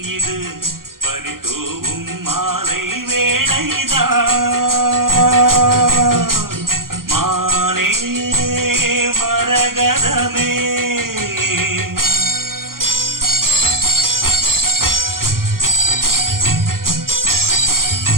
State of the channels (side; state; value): left; late; 0.92 ms